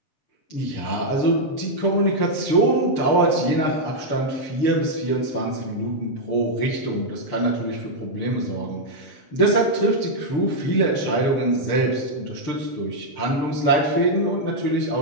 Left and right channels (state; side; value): late; right; 6.8 ms